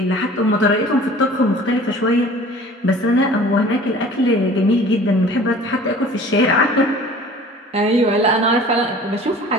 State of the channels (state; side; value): normal; both; correlation 0.46